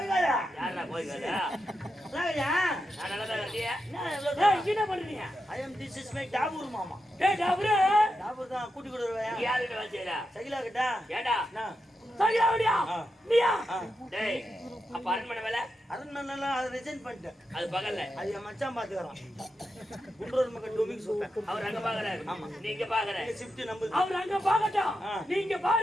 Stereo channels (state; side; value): normal; both; correlation 0.87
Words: கூட்டி கொடுவேன். சகிலா கிட்டா அரண்மனை அதை ரிசைன் பண்ணிட்டேன். அது பகல்ல அது என் மச்சான் பாத்துக்கிறான். குன்றூர் மக்கள் டொமிக் சொல்றேன். அவர் அங்க பாக்குறாரு. ஆமா, நீங்க பாக்குற ஷிஃப்ட் நம்பர். அவர் அங்க பாக்கட்டும், நீங்க